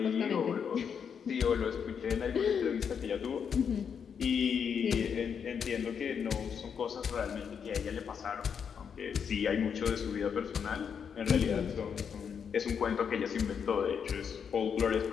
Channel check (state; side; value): quieter; right; 7.1 dB